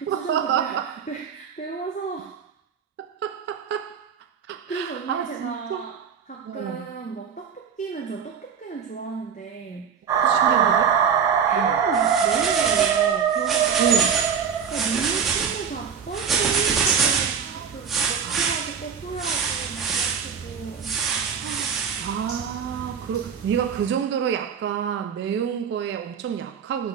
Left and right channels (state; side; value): quieter; left; 7.0 dB